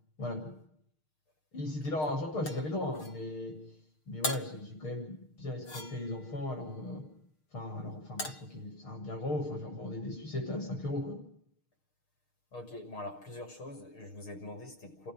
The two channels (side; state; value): right; late; 6.5 ms